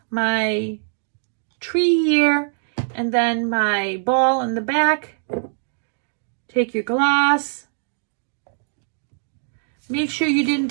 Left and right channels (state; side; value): silent; left; digital silence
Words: my tree here, and then my ball in the back. Take your glass. Make sure you didn't